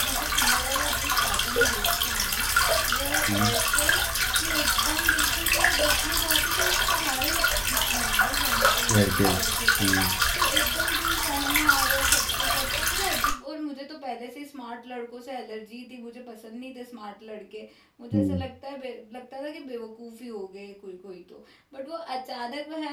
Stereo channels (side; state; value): both; identical; correlation 1.00